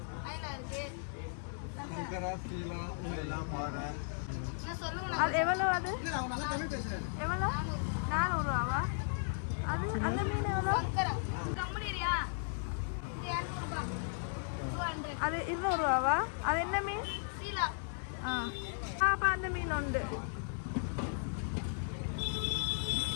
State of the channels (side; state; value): right; silent; digital silence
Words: அயலா இருக்கு. சங்கரா, சீலா இதெல்லாம் பாரு. சொல்லுங்க. அது எவ்வளவு? அது எவ்வளவு? 400 ரூபாவா? அது அந்த மீன் எவ்வளோ? கம்பெனியா? இது 200 ரூபாய். 200. அது 200 ரூபாவா? அது என்ன மீன்? சீலா. அப்ப அந்த மீன் உண்டு.